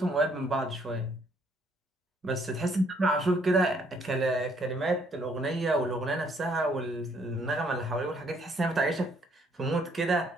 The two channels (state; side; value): normal; both; correlation 0.66